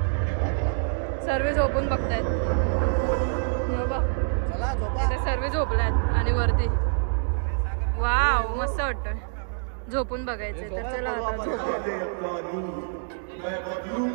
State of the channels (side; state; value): left; silent; digital silence